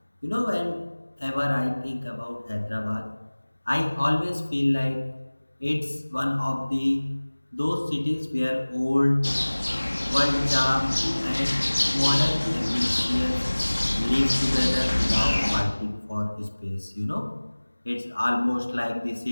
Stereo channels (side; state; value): both; inverted; correlation -1.00